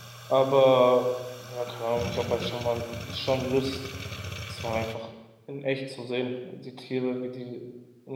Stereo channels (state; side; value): identical; both; correlation 1.00